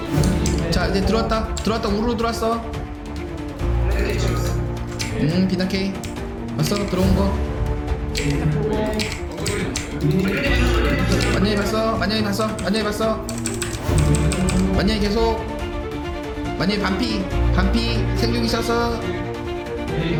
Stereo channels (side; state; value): both; identical; correlation 1.00